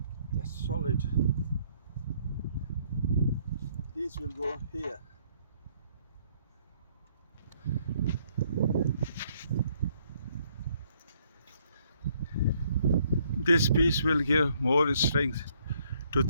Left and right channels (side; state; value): both; inverted; correlation -0.67